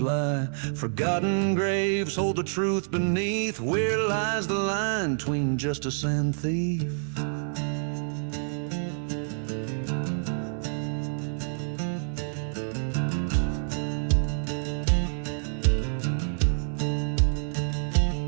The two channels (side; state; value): left; silent; digital silence